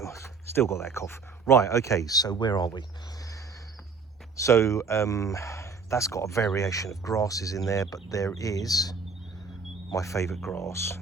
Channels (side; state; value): left; quieter; 4.9 dB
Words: Still got that cough. Right, okay, so where are we? So that's got a variation of grasses in there, but there is my favourite grass,